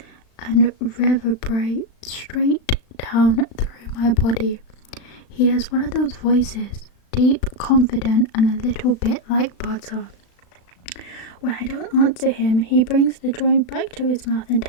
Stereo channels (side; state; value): right; late; 36 ms